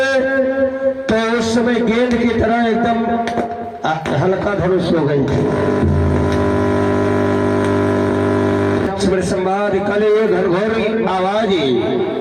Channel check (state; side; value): identical; both; correlation 1.00